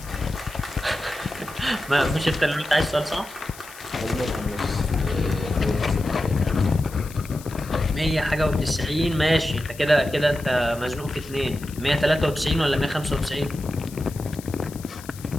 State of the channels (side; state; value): left; noise; hiss, 18 dB below the sound